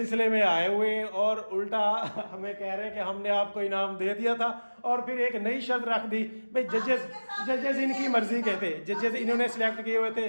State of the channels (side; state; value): both; inverted; correlation -1.00